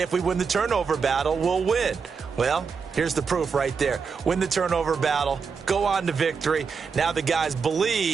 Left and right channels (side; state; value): left; quieter; 5.6 dB